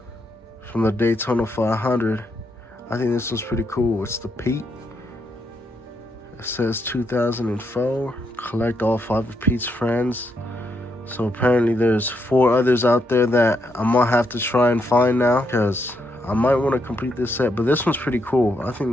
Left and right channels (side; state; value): both; normal; correlation 0.78